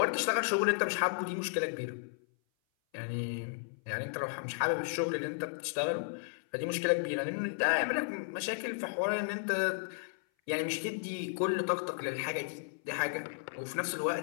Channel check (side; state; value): right; silent; 55 dB below the other